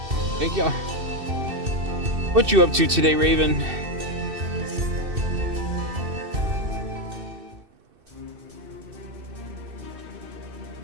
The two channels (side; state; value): left; late; 2.6 ms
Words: Thank y'all. What you up to today, Raven?